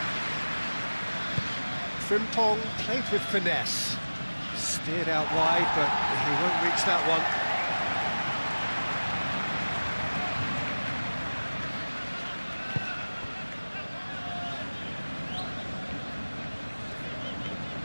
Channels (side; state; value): both; inverted; correlation -1.00